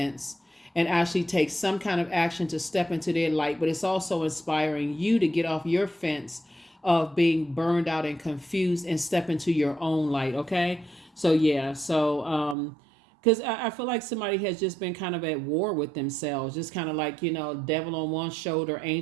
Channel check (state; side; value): drops out; left; at 12.6 s